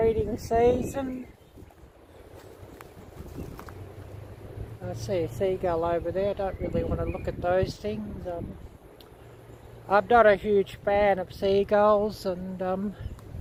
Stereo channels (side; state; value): both; identical; correlation 1.00